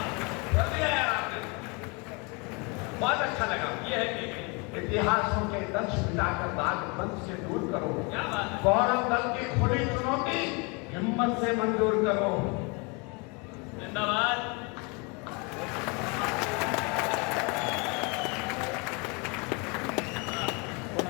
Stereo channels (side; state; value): right; quieter; 30.7 dB